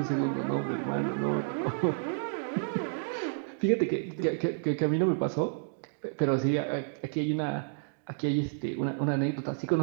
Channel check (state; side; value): silent; left; digital silence